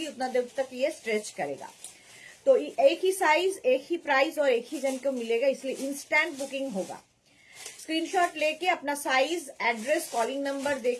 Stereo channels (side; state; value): both; identical; correlation 1.00